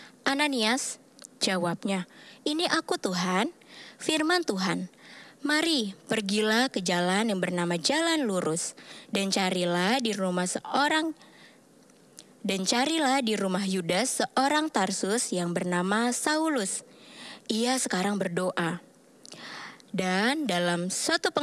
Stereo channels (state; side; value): identical; both; correlation 1.00